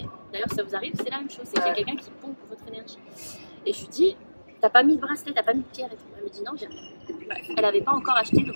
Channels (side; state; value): both; inverted; correlation -1.00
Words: D'ailleurs, si ça vous arrive, c'est la même chose. C'est qu'il y a quelqu'un qui pompe votre énergie. Et je lui dis, t'as pas mis de bracelet, t'as pas mis de pierre et tout. Elle me dit, non, j'ai rien. Elle n'avait pas encore acheté le